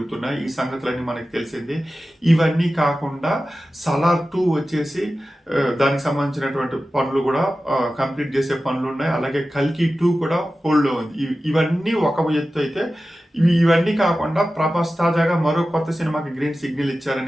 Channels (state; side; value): normal; both; correlation 0.94